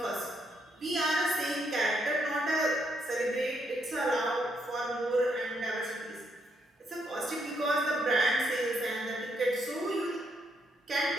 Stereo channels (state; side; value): normal; both; correlation 0.75